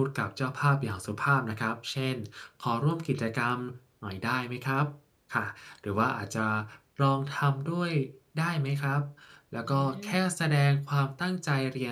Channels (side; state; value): both; identical; correlation 1.00